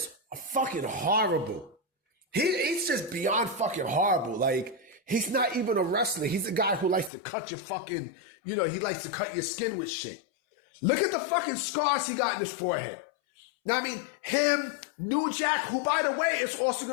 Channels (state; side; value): drops out; right; at 7.1 s